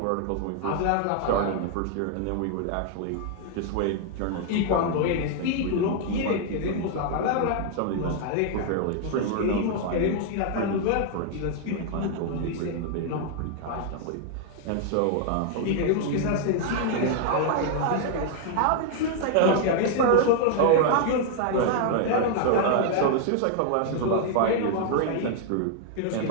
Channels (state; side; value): different; both; correlation 0.00